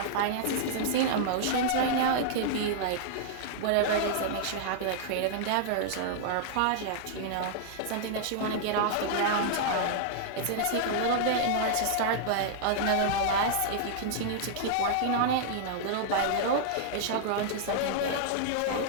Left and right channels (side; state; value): both; different; correlation -0.01